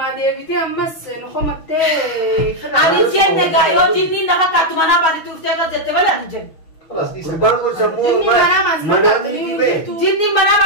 deebite ammas nuxumatte ani jenne ga yo jinni nama katumana bari tufte ka jette bale ani jenne. Kurban ko samu manami be. Jinni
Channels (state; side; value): late; right; 6.3 ms